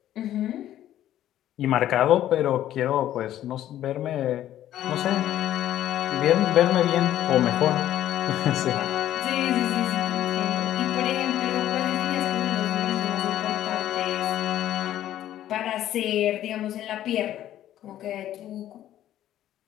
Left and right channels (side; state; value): right; quieter; 12.4 dB